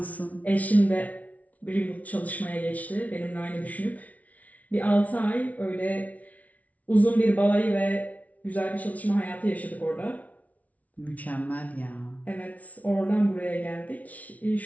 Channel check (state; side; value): late; right; 0.070 ms